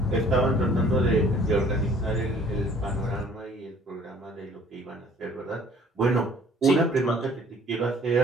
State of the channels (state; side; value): normal; both; correlation 0.55